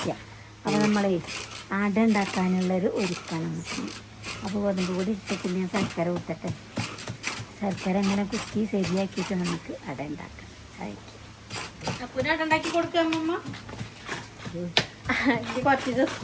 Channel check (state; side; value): identical; both; correlation 1.00